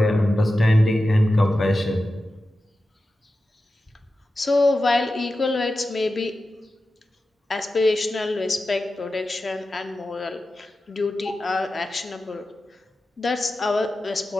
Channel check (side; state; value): both; normal; correlation 0.93